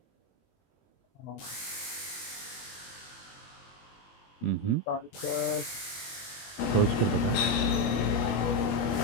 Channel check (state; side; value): late; right; 21 ms